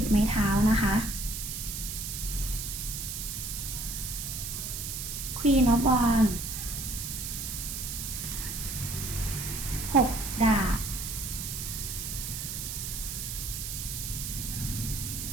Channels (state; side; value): noise; right; hiss, 5 dB below the sound